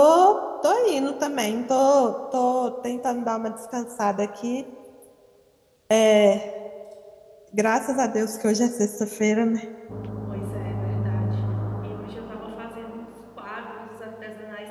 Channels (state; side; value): identical; both; correlation 1.00